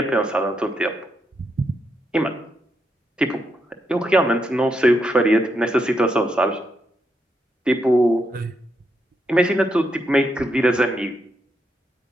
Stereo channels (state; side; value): normal; both; correlation 0.81